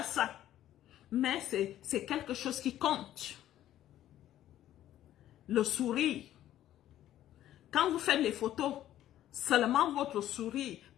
ça. Mais c'est quelque chose qui compte. Le sourire. Quand vous faites les photos, seulement votre sourire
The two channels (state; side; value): quieter; right; 12.6 dB